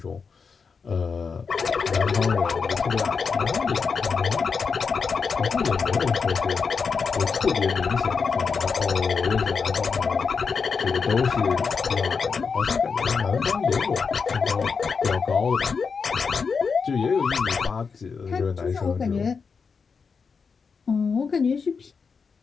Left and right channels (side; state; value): right; quieter; 5.4 dB